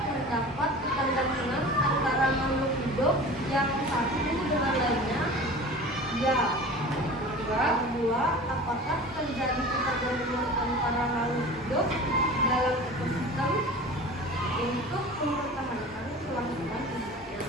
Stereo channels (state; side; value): normal; both; correlation 0.38